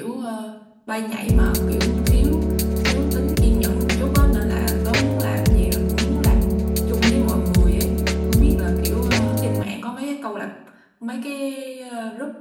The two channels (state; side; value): identical; both; correlation 1.00